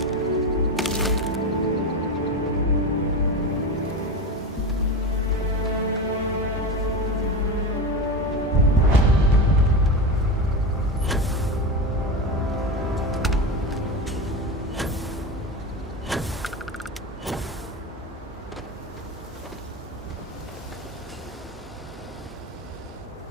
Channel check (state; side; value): normal; both; correlation 0.21